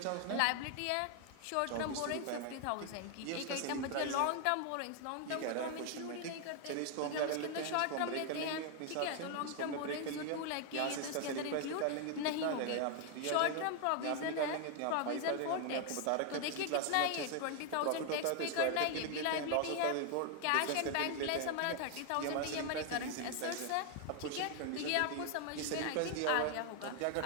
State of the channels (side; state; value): both; different; correlation 0.00